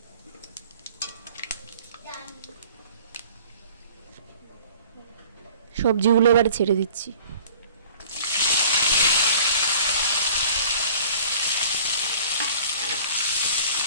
সবজিগুলো এবারে ছেড়ে দিচ্ছি।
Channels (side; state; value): both; inverted; correlation -0.49